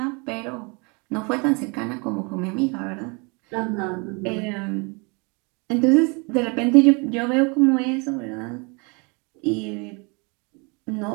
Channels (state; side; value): quieter; left; 31.4 dB